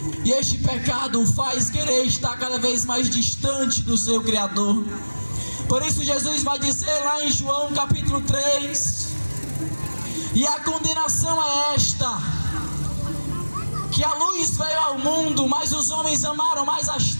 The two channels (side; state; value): both; inverted; correlation -1.00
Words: e este pecado o faz querer estar cada vez mais distante do seu Criador. Por isso Jesus vai dizer lá em João capítulo 3, e a condenação é esta, que a luz veio ao mundo, mas os homens amaram mais as